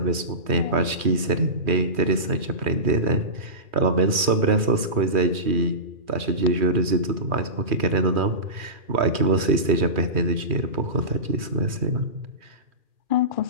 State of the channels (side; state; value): left; late; 3.1 ms